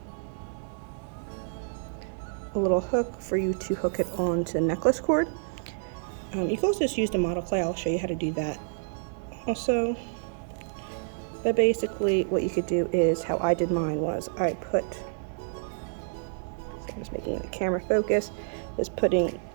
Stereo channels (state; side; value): silent; left; digital silence